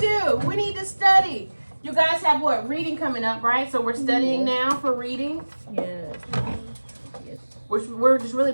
we need to study. You guys have what? Reading coming up, right? So we're studying now for reading. Yes. We're just really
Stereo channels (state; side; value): inverted; both; correlation -1.00